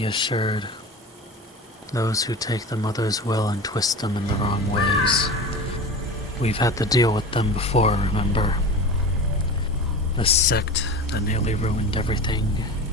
assured. Those who take the mother's will and twist them in the wrong ways. We've had to deal with them before, remember? The sect that nearly ruined everything.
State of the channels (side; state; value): both; normal; correlation 0.32